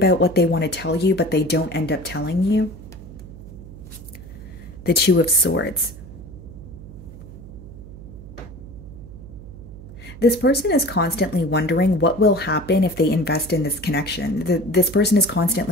what they want to tell you, but they don't end up telling you. The Two of Swords. This person is constantly wondering what will happen if they invest in this connection. This person is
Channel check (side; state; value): right; noise; hum, 15 dB below the sound